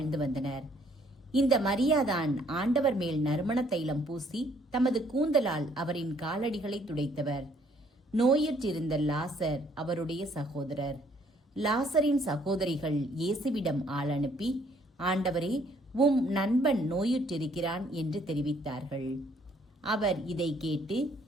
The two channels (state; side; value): normal; both; correlation 0.64